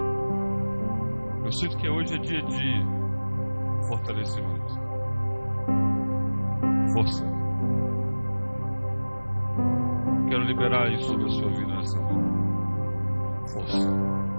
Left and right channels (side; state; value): both; inverted; correlation -1.00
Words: Eu sinto que hoje é dia de fortalecimento, força. Quero liberar isso sobre a sua vida nessa manhã. Força.